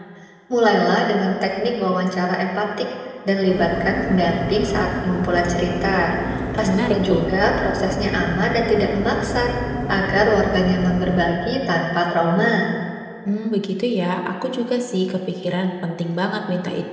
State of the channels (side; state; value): both; identical; correlation 1.00